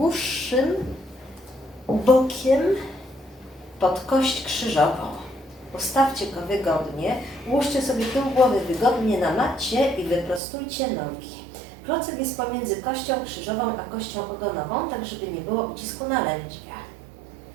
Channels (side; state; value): left; drops out; at 10.4 s